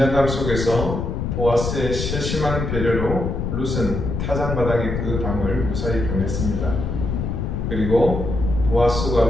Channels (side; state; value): left; noise; rumble, 3 dB below the sound